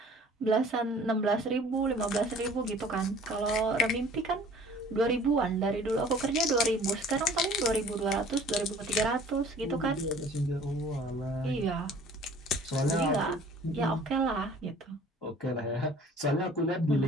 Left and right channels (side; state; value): both; normal; correlation 0.50